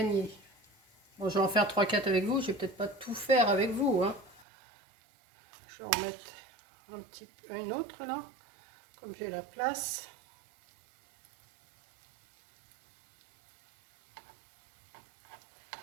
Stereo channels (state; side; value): drops out; left; at 4.5 s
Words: Bon, je vais en faire 3-4 avec vous. Je vais peut-être pas tout faire avec vous. Hein. Je vais en mettre un autre là. Comme j'ai la place.